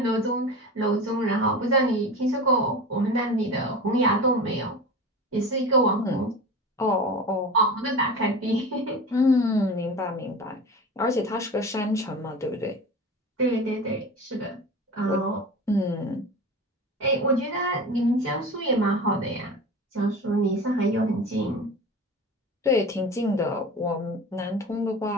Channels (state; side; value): normal; both; correlation 0.32